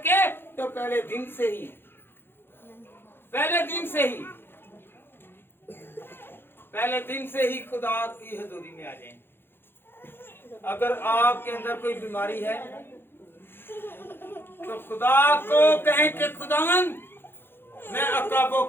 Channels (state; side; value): late; right; 0.10 ms